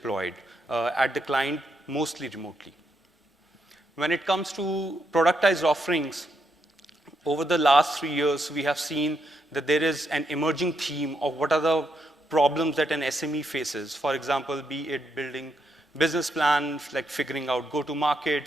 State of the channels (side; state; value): both; normal; correlation 0.79